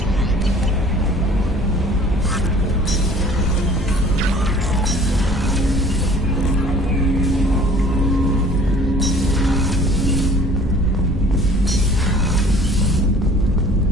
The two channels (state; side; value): normal; both; correlation 0.51